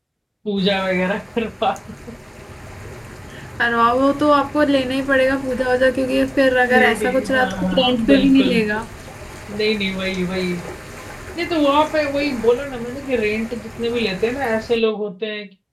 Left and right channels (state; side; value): identical; both; correlation 1.00